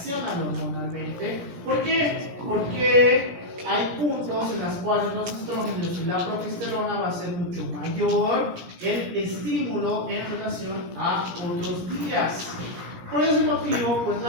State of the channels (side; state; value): left; late; 17 ms